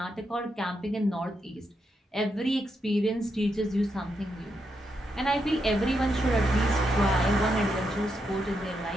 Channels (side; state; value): both; normal; correlation 0.82